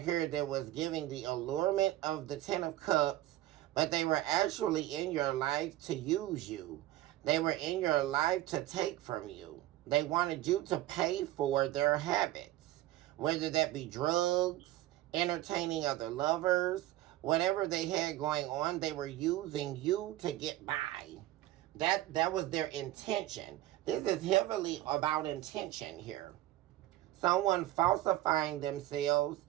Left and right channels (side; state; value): left; quieter; 15.3 dB